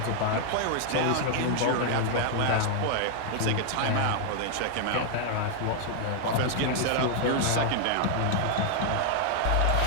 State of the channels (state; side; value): different; both; correlation 0.00